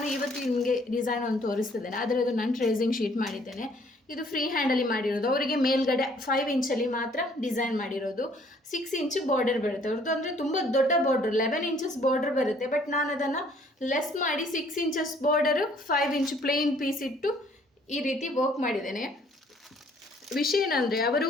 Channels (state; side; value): normal; both; correlation 0.60